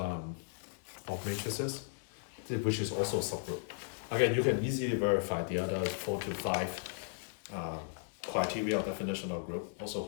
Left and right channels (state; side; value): silent; right; 54 dB below the other